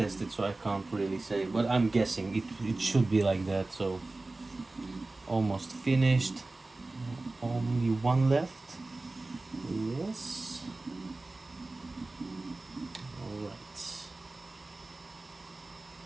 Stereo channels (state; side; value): quieter; left; 3.1 dB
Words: so I can't really say, but I'm guessing it should be like that. So almost finished, only one left. Yes. All right.